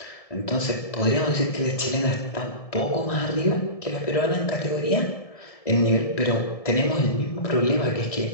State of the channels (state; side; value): late; right; 1.7 ms